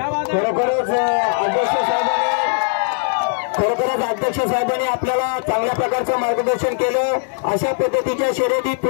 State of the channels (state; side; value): silent; right; digital silence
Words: खरोखरच अध्यक्ष साहेबांनी आपल्याला चांगल्या प्रकारचं मार्गदर्शन केलं. अशा पद्धतीच्या शर्यती